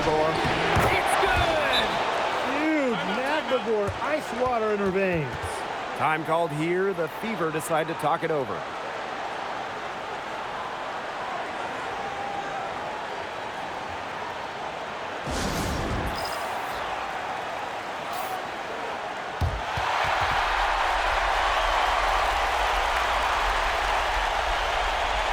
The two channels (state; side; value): identical; both; correlation 1.00